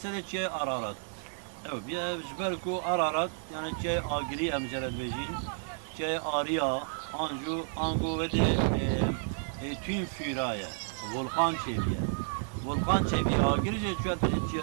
seçe ararat evet bir jberku ararat yani çe agri emcelet bejin çe arya angu ve de tüm firaya volkan çeviye agirice çuat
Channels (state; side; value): silent; left; digital silence